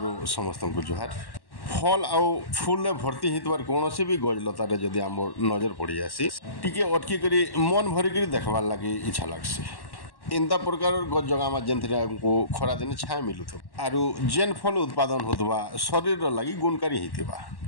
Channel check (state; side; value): late; right; 1.1 ms